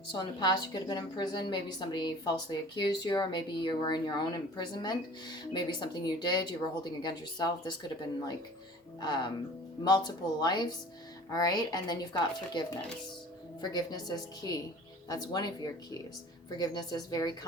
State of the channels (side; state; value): both; normal; correlation 0.45